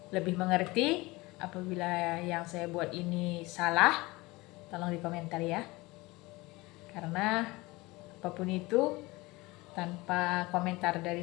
lebih mengerti, apabila yang saya buat ini salah, tolong di komentar ya. Karena apapun itu, tanpa komentar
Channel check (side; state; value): right; quieter; 22.1 dB